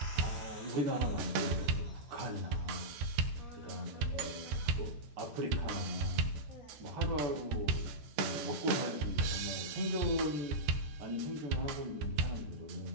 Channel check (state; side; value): late; left; 14 ms